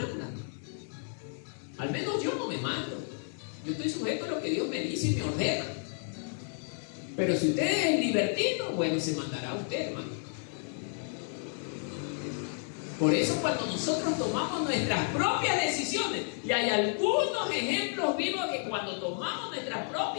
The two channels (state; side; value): silent; right; 57 dB below the other